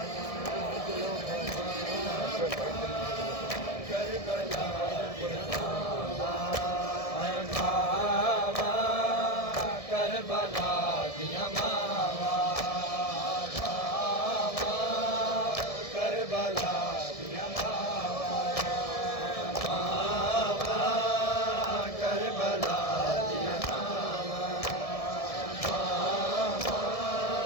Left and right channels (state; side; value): late; right; 1.7 ms